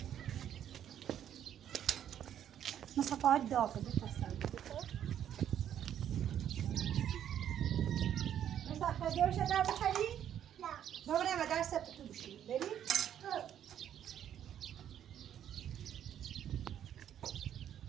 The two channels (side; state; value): left; quieter; 10.1 dB